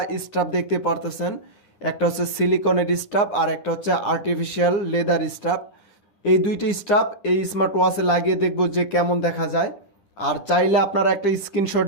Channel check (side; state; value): right; late; 10 ms